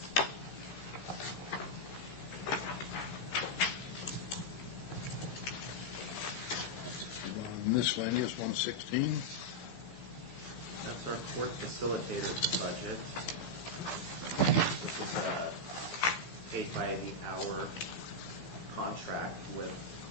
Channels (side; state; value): right; late; 15 ms